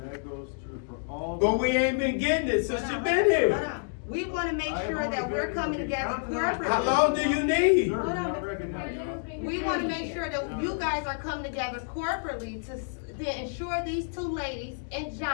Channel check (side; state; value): right; silent; digital silence